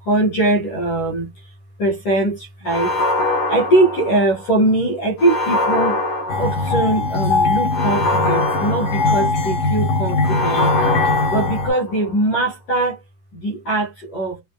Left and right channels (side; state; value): right; late; 11 ms